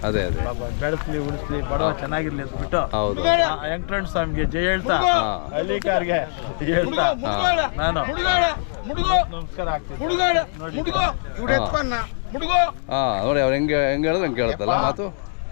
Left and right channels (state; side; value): silent; right; digital silence